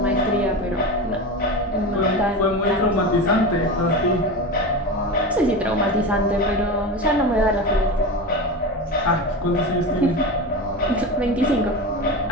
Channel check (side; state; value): both; normal; correlation 0.24